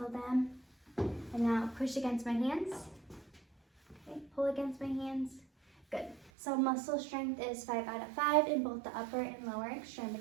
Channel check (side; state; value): left; drops out; at 6.3 s